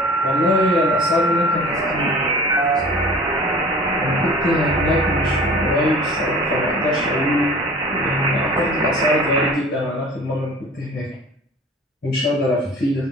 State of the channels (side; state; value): both; normal; correlation 0.43